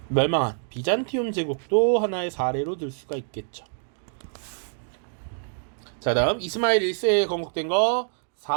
멸망한 비잔티움 제국도 하나의 사례로 들 수가 있겠죠. 자, 다음 이스마일 1세에 건국된 거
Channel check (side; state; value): left; silent; digital silence